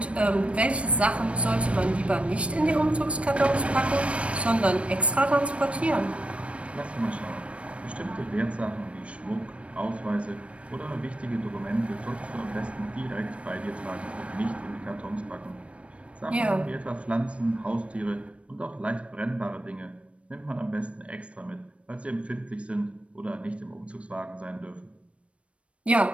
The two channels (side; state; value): left; late; 0.062 ms